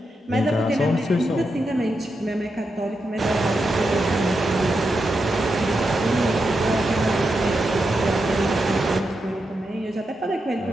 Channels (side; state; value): both; normal; correlation 0.86